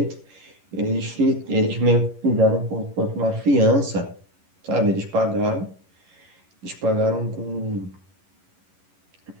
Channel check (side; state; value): left; late; 11 ms